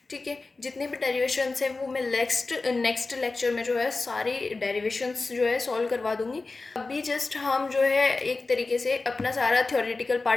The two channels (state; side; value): quieter; right; 3.6 dB